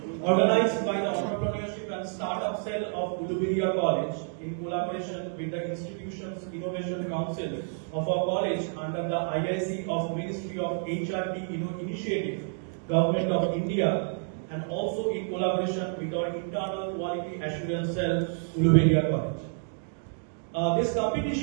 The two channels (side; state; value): left; silent; 59 dB below the other